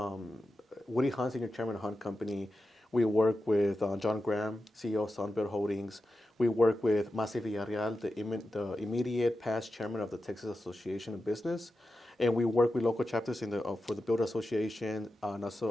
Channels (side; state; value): both; normal; correlation 0.91